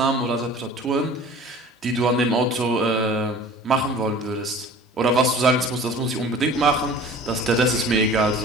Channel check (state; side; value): normal; both; correlation 0.43